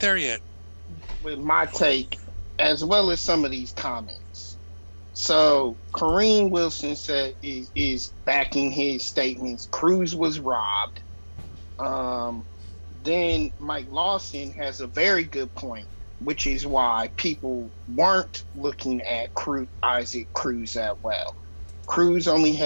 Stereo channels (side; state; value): both; inverted; correlation -1.00